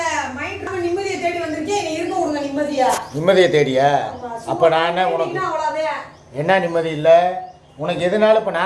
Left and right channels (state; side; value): identical; both; correlation 1.00